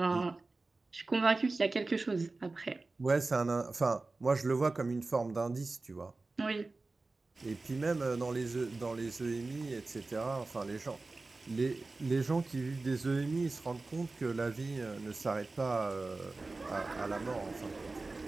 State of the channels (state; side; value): quieter; left; 3.5 dB